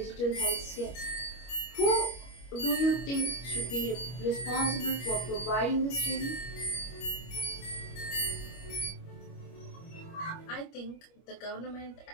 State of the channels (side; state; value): right; late; 25 ms